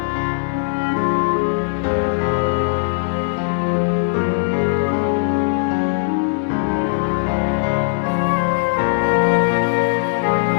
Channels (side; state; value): right; silent; digital silence